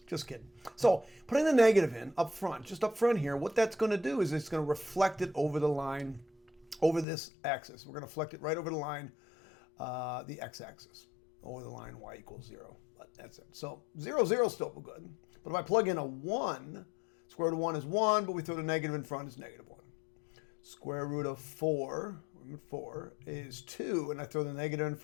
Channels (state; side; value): drops out; right; at 7.1 s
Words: Just kidding. So putting the negative in up front, just up front here, what that's going to do is it's going to reflect it over the line, over this axis. We're going to reflect it right over the line, the x-axis, over the line y equals 0. But that's it. So 0, 0 is still good. But if I plug in a 1, square root of 1 is 1, but we throw the negative in front, it's negative 1. Square root of 4, 4 is 2, and I throw the negative in